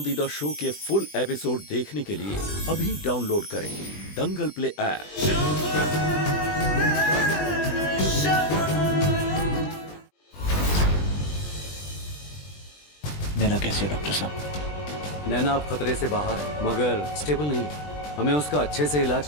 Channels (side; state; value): right; late; 20 ms